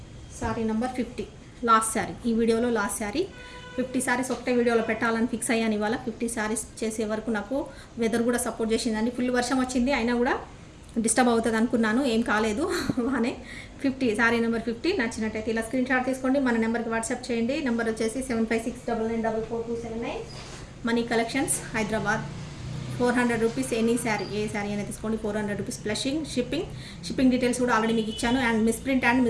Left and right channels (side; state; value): both; identical; correlation 1.00